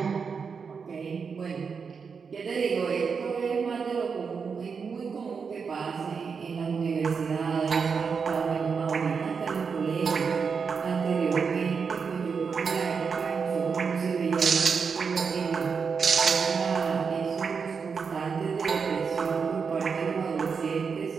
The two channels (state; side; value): quieter; left; 5.7 dB